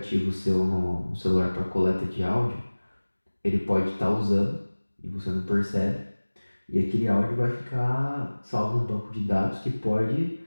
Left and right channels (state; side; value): inverted; both; correlation -1.00